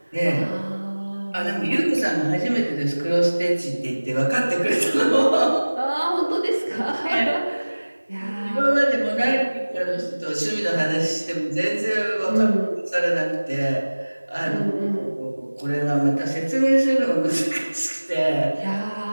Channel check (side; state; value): both; inverted; correlation -1.00